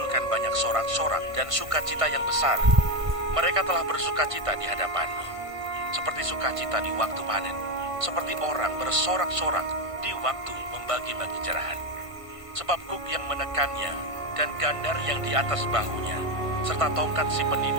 banyak sorak-sorak dan sukacita yang besar. Mereka telah bersukacita di hadapanmu, seperti sukacita di waktu panen, seperti orang bersorak-sorak di waktu membagi-bagi jerahan. Sebab kuk yang menekannya dan gandar yang di atas bahunya, serta tongkat si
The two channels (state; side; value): late; left; 1.5 ms